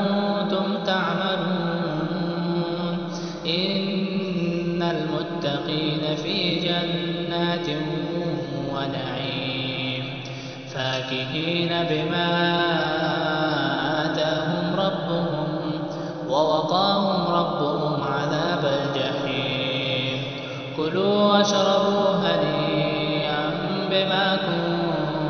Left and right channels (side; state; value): both; identical; correlation 1.00